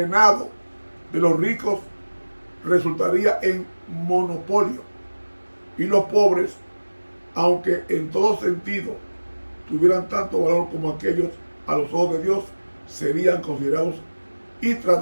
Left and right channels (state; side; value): inverted; both; correlation -1.00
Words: de los ricos resultaría en monopolio, y los pobres, aunque en todo sentido tuvieran tanto valor como aquellos a los ojos de Dios, serían considerados y